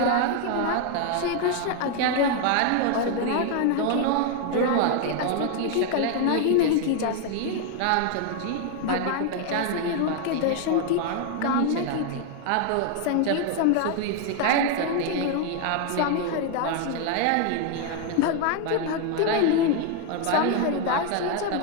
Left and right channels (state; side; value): different; both; correlation 0.01